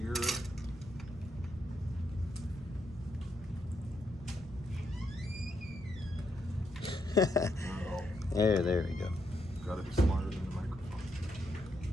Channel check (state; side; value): normal; both; correlation 0.79